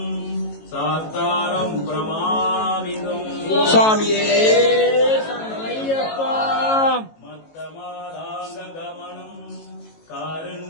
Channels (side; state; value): right; late; 18 ms